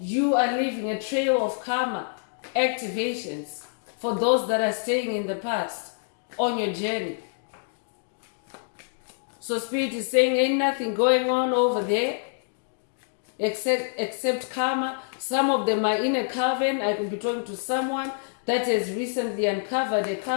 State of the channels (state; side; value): silent; right; digital silence